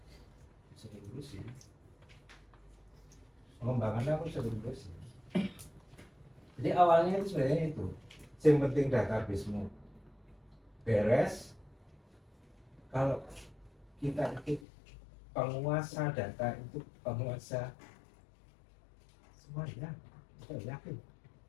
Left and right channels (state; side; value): drops out; right; at 14.7 s